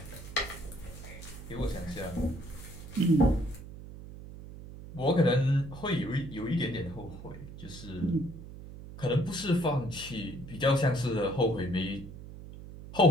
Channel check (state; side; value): noise; right; hum, 13 dB below the sound